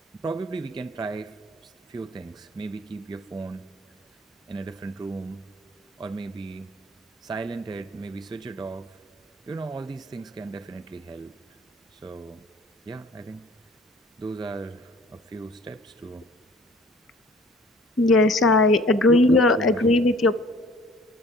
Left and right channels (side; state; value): both; normal; correlation 0.52